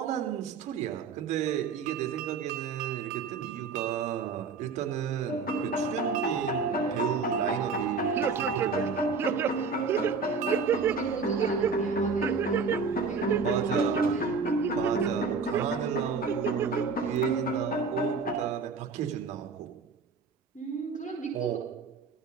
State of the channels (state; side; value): quieter; left; 4.8 dB